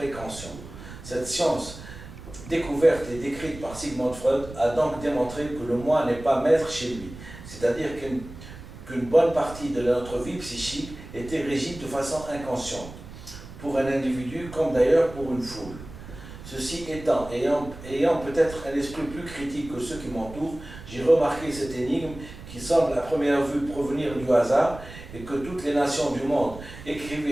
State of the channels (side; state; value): right; noise; rumble, 15 dB below the sound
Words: Cette science, découverte et décrite par Sigmund Freud, a donc démontré que le moi n'est pas maître chez lui, c'est-à-dire qu'une bonne partie de notre vie psychique était régie de façon inconsciente, pour un individu comme d'ailleurs pour une foule. Ceci étant, ayant peut-être un esprit plus critique que ceux qui m'entourent, j'ai remarqué cette énigme qui semble à première vue provenir du hasard et que toutes les nations du monde